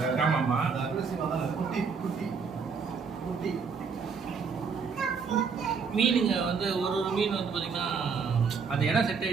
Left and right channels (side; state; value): left; quieter; 5.6 dB